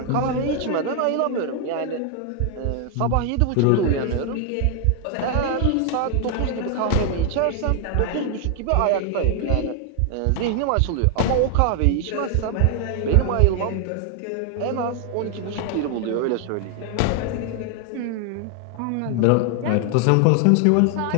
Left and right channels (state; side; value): different; both; correlation 0.00